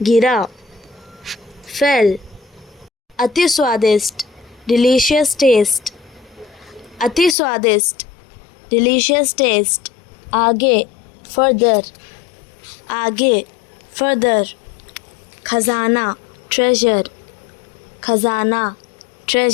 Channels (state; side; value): drops out; right; at 7.4 s